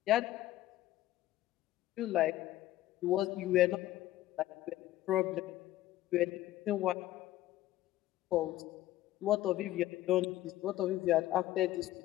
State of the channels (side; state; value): right; quieter; 14.9 dB